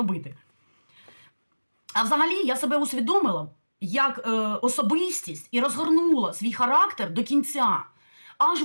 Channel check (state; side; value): inverted; both; correlation -1.00